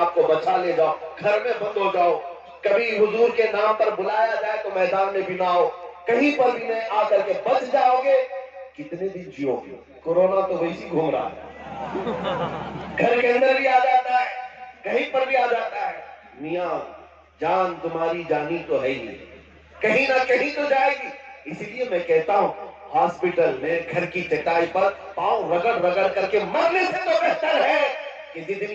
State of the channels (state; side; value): identical; both; correlation 1.00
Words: کو بچا لے جاؤ، گھر میں بند ہو جاؤ، کبھی حضور کے نام پر بلایا جائے تو میدان میں بھی نہ آؤ، کہیں پر بھی نہیں آ کر کے بچ جاؤ گے، کتنے دن جیو گے؟ کورونا تو ویسی گھوم رہا ہے، گھر کے اندر بھی آ جاتا ہے، کہیں پر بھی آ جاتا ہے۔ میاں جان تمہاری جانی تو ہے ہی، کہیں نہ کہیں تو جائے گی۔ اسی لیے میں کہتا ہوں ہاسپٹل میں گھر کی چٹائی پر پاؤں رگڑ رگڑ کر کے مرنے سے تو بہتر ہے کہ